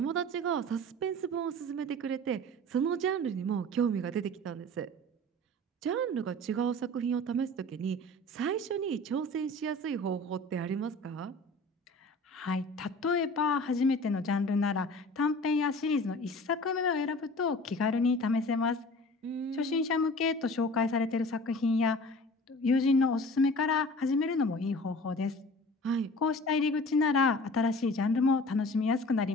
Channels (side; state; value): both; normal; correlation 0.42